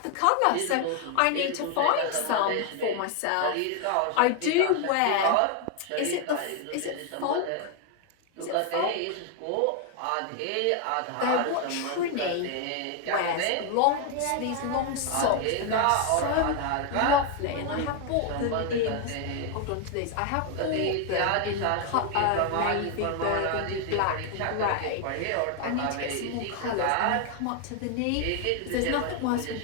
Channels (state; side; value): different; both; correlation 0.01